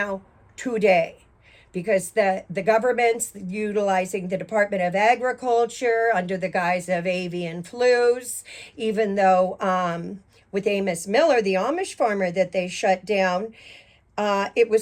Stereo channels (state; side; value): identical; both; correlation 1.00